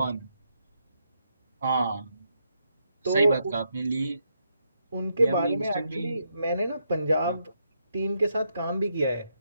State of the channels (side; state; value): both; inverted; correlation -0.79